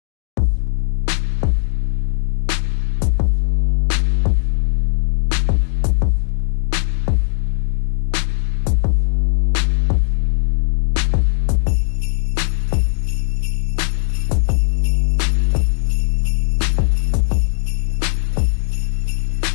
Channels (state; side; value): silent; right; digital silence